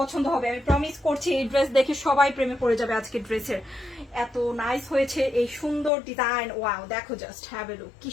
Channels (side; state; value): right; drops out; at 5.9 s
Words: হবে, আমি প্রমিস করছি। এই ড্রেস দেখে সবাই প্রেমে পড়ে যাবে আজকে ড্রেসের। এত নাইস হয়েছে এই সুন্দর ডিজাইন। ওয়াও, দেখো জাস্ট হ্যাভ এ লুক, কি